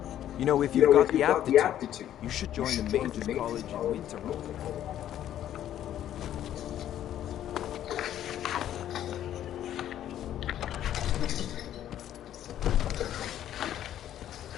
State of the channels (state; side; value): quieter; right; 11.4 dB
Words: You know, if you've got the aptitude, you should join the Mages College in Winterhold.